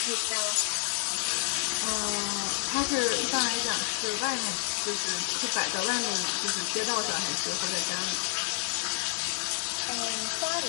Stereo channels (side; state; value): right; silent; 58 dB below the other